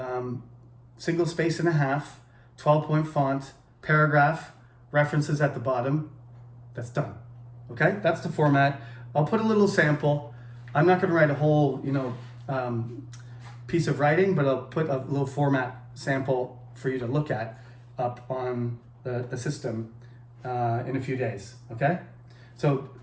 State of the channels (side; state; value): both; identical; correlation 1.00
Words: Single space and a half, 12-point font, paragraph, references at the bottom. That's done. Okay, that's the format. I'll put a little sample. I'm not going to write a whole, piece of writing, but I'll put a little format sample for you to look at up on the system in a few days. Okay, so